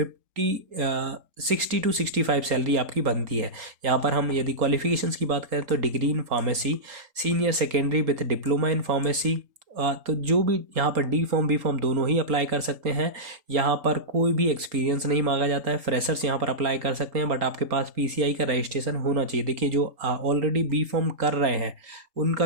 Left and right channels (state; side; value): late; left; 3.8 ms